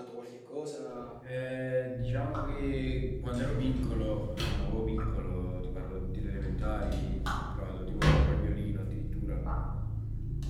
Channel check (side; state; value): both; identical; correlation 1.00